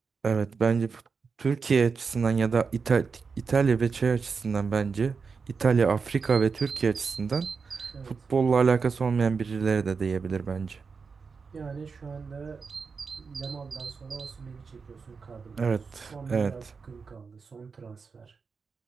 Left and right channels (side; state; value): left; quieter; 5.2 dB